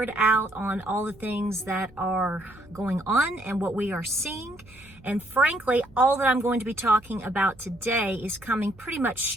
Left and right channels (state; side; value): noise; right; hum, 25 dB below the sound